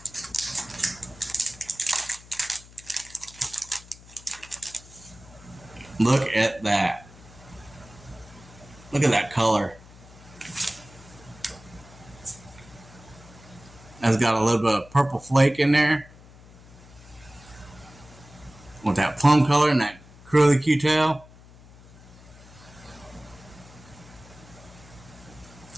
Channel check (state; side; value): noise; left; hum, 22 dB below the sound